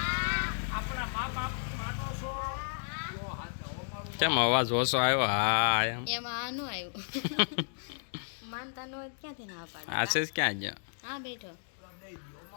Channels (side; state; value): right; silent; digital silence